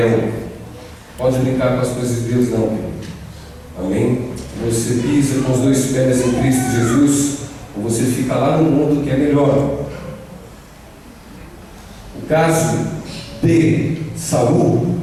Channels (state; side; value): identical; both; correlation 1.00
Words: Pode brincar com as coisas de Deus não, querido. Amém? Você pisa com os dois pés em Cristo Jesus, ou você fica lá no mundo que é melhor. O caso de Saul,